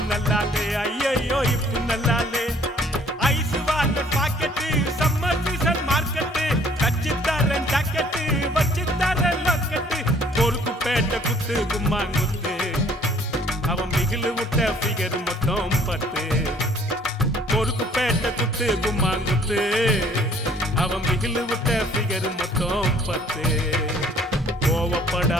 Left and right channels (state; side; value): normal; both; correlation 0.58